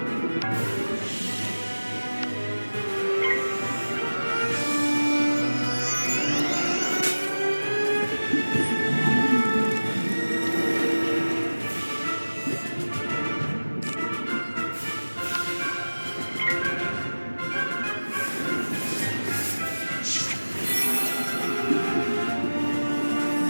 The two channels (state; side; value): inverted; both; correlation -1.00